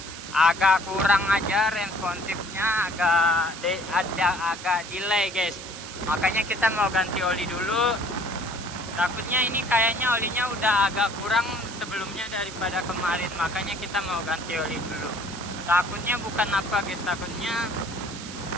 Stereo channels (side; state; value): right; noise; hiss, 12 dB below the sound